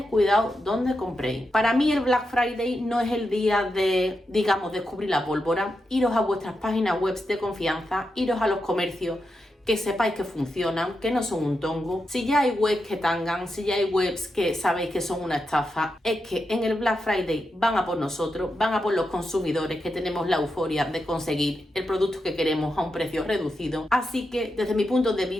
cuidado donde compréis. Para mí el Black Friday no es el día de, digamos, descubrir la pólvora. Iros a vuestras páginas web de confianza, iros a los comercios que sepáis que funcionan, que no son un tongo. Si ya hay webs que tangan, si ya hay webs que sabéis que son una estafa, es que en el Black Friday van a por nosotros, van a por los consumidores que tenemos la euforia de conseguir el producto que queremos a un precio reducido. Así que desde mi punto de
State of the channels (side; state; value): both; normal; correlation 0.87